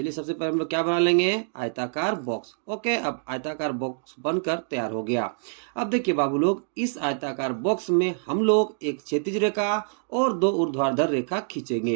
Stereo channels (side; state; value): left; silent; digital silence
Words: सबसे पहले हम लोग क्या बना लेंगे? आयताकार बॉक्स। ओके, अब आयताकार बॉक्स बनकर तैयार हो गया। अब देखिए बाबू लोग, इस आयताकार बॉक्स में हम लोग एक क्षैतिज रेखा और दो ऊर्ध्वाधर रेखा